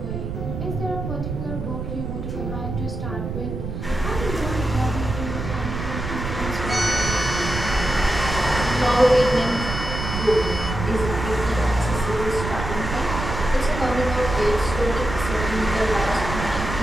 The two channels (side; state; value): right; noise; rumble, 5 dB below the sound